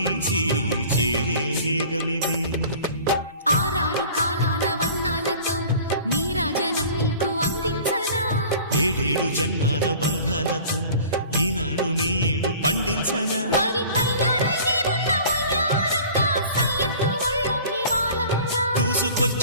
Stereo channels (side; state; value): both; inverted; correlation -0.44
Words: చేరే వేగమిది. ఆరారు కాలాల వర్ణాలతో నీరాజనం నీకు అందించనా, ఏడేడు జన్మాల బంధాలతో ఈనాడు నీ ఏడు పండించనా. మరి తయారయ్యే ఉన్న వయ్యారంగా సయ్యత్తు ఒళ్ళోకి వాలంగా